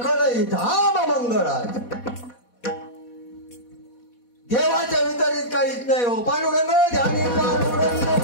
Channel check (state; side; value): late; right; 4.1 ms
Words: धाम मंगळात देवाच्या वितरित काहीच नाही हो पांडुरंग ध्यानी